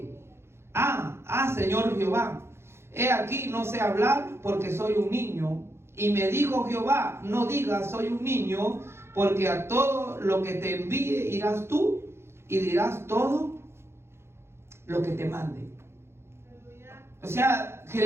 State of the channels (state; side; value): late; left; 0.12 ms